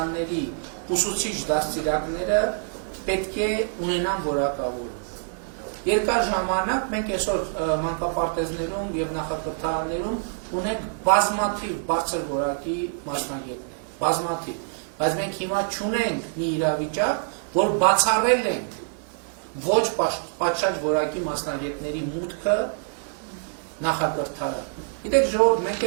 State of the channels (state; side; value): silent; left; digital silence